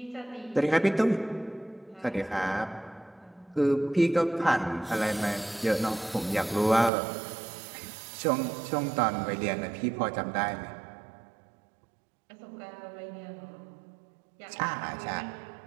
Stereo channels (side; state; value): left; drops out; at 6.9 s